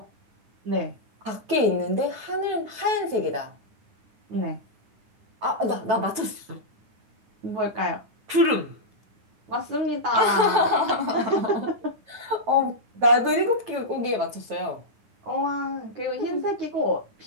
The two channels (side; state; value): left; late; 9.2 ms